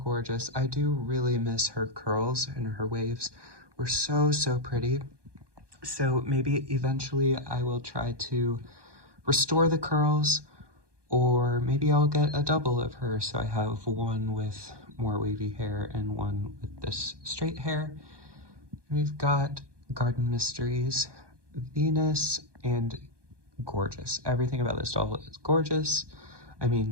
I do really miss her curls, and her waves were so pretty. So maybe eventually I will try to restore the curls, or maybe I'll get a double of her, so I have one with more wavy hair and one with this straight hair. We've got Garden Mysteries, Venus, and gorgeous. Everything about this doll is gorgeous. I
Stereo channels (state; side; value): late; left; 1.2 ms